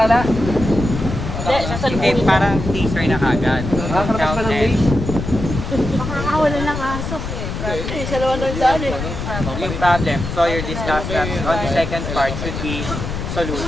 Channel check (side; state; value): left; noise; rumble, 5 dB below the sound